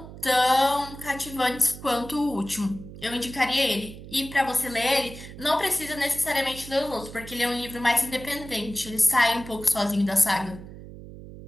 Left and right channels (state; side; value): noise; right; hum, 14 dB below the sound